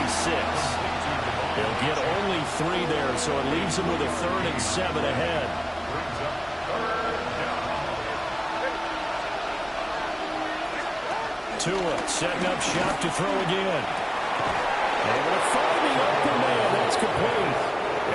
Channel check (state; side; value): identical; both; correlation 1.00